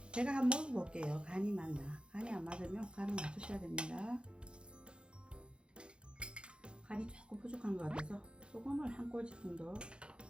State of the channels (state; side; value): late; left; 0.055 ms